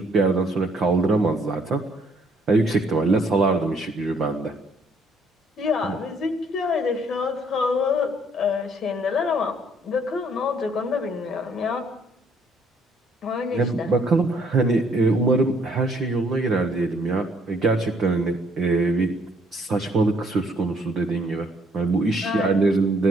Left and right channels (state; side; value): normal; both; correlation 0.65